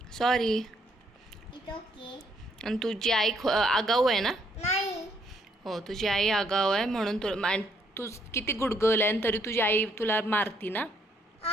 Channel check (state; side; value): normal; both; correlation 0.71